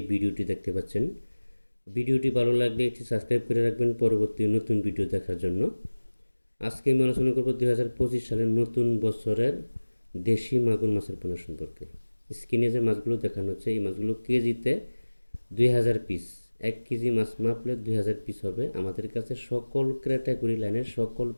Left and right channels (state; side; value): inverted; both; correlation -1.00